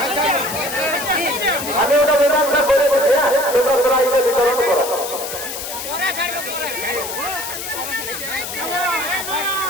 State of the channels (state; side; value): noise; left; hiss, 7 dB below the sound